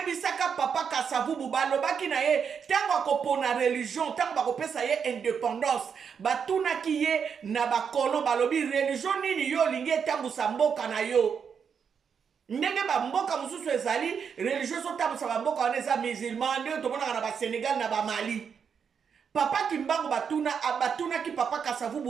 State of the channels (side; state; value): left; quieter; 6.8 dB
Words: papa Kasavubu balobaki na ye tango akopona religion tango bakopesa ye indépendance batunaki ye na bakolo balobi religion nini yo lingi etambusa mboka na yo. Ndenge ba mboka mususu ezali religion so tambusa ba mboka wana eza musulman nde tomonaka na ba Sénégal na ba Mali. Papa Kimbangu batunaki papa